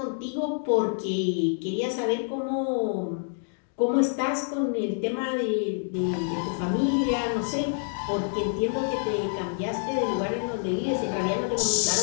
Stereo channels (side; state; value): right; silent; digital silence